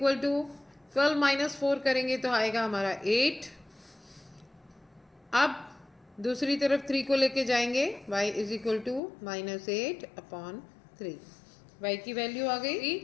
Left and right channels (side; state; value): right; drops out; at 9.0 s